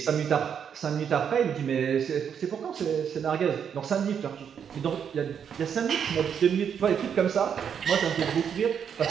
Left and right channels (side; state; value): left; quieter; 7.8 dB